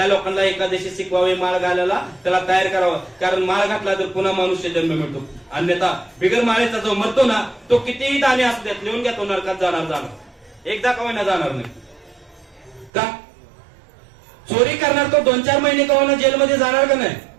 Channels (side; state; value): left; drops out; at 12.9 s